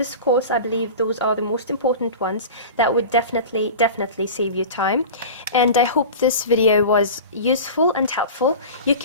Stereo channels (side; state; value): both; inverted; correlation -0.33